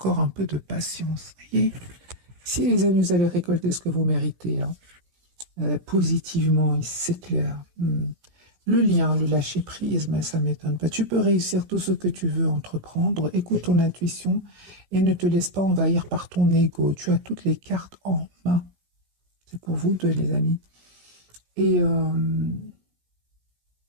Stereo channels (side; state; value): left; late; 17 ms